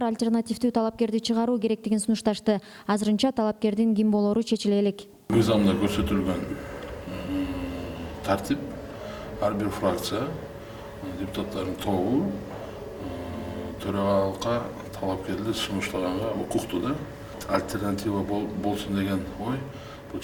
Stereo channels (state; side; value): identical; both; correlation 1.00